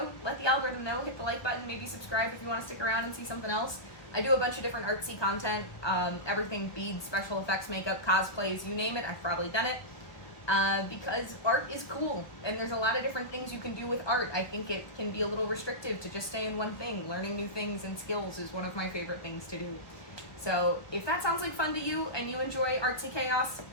let the algorithm know, hit the like button, maybe subscribe if you want to stick around and see something else. I do a bunch of different artsy content, everything beads, special effects, makeup, cosplays, you name it, I've probably done it. Because art is cool, and there's a lot of different things you can do with art. I think it can be a little restrictive to just stay in one thing. Learning new things and skills is one of my favorite things to do. So if that sounds like fun to you and you enjoy artsy chaos,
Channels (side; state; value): right; late; 1.2 ms